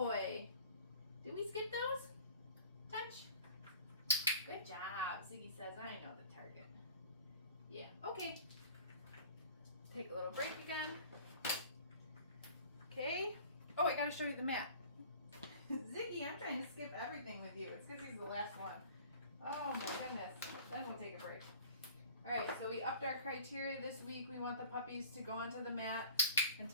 Did we skip those? Touch. Good job. Ziggy says, I know the target. Yeah, okay. Take a little break again. Okay. Oh, I gotta show you the mat. Ziggy, I'm trying to skip everything with you. It's because he's the last one. Oh my goodness. Then we'll take a break. All right, so we upped our criteria this week. We want the puppies to go onto the mat and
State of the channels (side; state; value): both; inverted; correlation -0.46